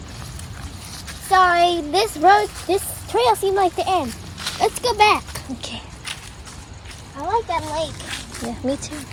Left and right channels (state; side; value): identical; both; correlation 1.00